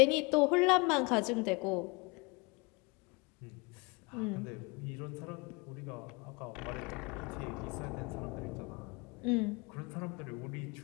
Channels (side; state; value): right; quieter; 28.3 dB